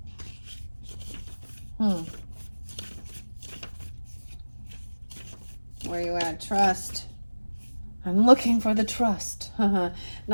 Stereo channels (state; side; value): inverted; both; correlation -1.00